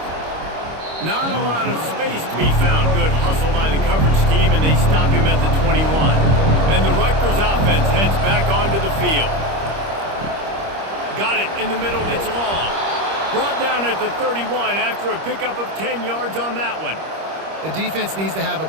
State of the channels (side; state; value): left; late; 25 ms